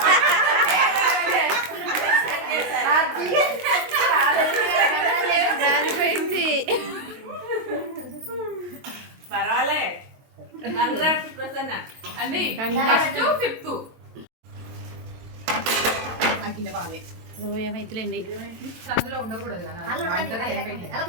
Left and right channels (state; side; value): late; left; 22 ms